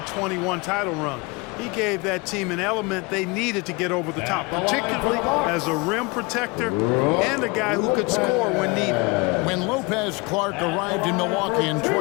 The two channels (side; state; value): right; quieter; 27.1 dB